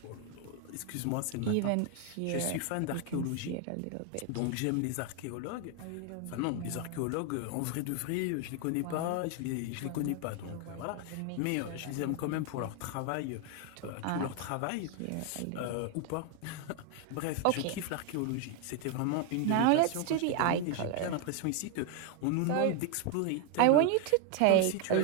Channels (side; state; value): both; different; correlation 0.01